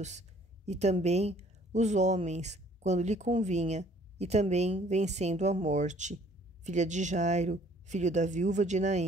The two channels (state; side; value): normal; both; correlation 0.58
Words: e também os homens, quando lhe convinha, e também vencendo a morte, filha de Jairo, filho da viúva de